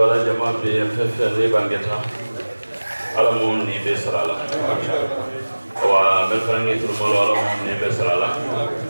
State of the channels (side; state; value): both; inverted; correlation -1.00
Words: جماعة بفف ريبانجتا على موني بسرالا ومن ترملو على موني بسرالا